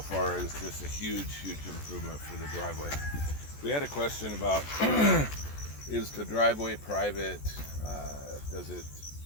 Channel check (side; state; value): right; late; 14 ms